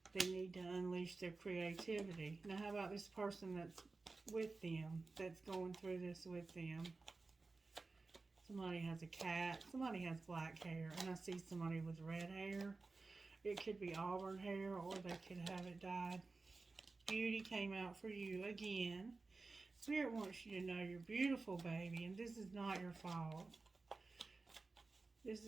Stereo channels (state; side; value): quieter; left; 3.8 dB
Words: They need to unleash their creativity. Now, how about this person that's with them, that's going through this with them? Somebody has a cat. Somebody has black hair. And I see somebody with red hair. It could be auburn hair, or they could have it dyed. Beauty came out for you again. Spirit wants you to know you're beautiful, baby, and this is not your fault. This